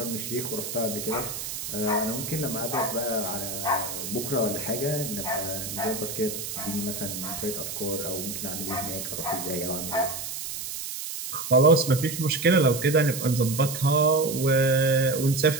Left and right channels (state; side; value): noise; right; hiss, 6 dB below the sound